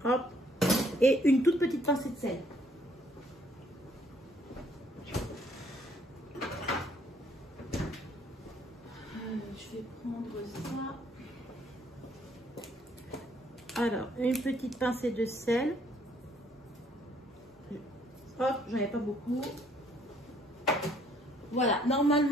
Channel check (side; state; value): both; normal; correlation 0.65